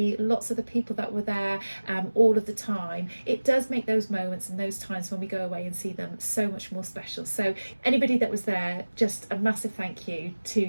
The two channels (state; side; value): inverted; both; correlation -1.00